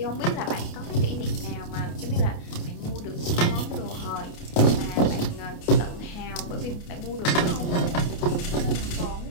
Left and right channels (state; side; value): late; right; 28 ms